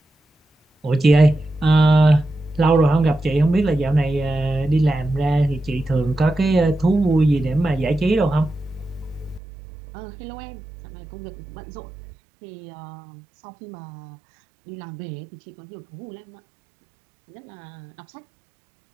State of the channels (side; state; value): left; drops out; at 9.4 s